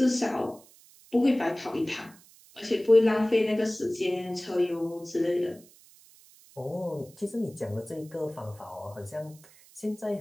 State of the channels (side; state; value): right; noise; hiss, 25 dB below the sound